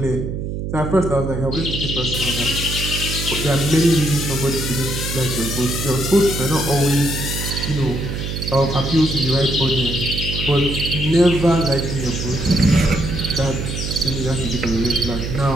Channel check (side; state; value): right; noise; hum, 4 dB below the sound